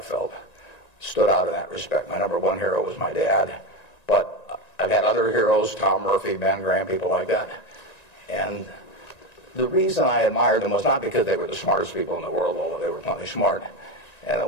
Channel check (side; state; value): right; late; 1.9 ms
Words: stood out in that respect. My number one hero was my dad, but I've had other heroes, Tom Murphy, Ben Graham, people like that. And the reason I admired them was not because they were the smartest people in the world, although they were plenty smart. And it